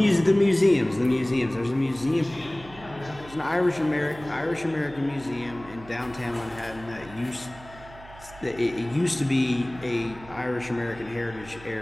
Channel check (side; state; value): right; noise; hum, 19 dB below the sound